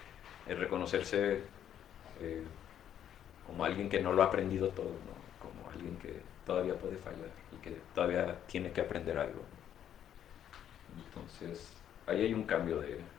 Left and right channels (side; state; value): right; quieter; 10.0 dB